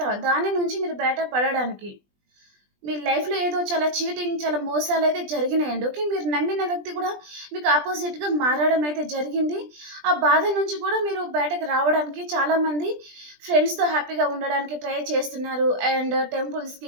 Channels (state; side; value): late; left; 20 ms